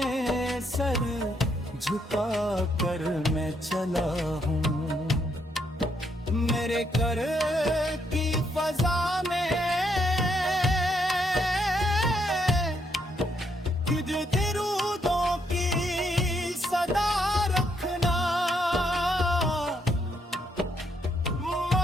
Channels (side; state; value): both; normal; correlation 0.74